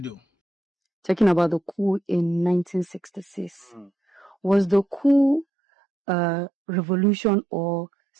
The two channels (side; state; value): left; drops out; at 5.5 s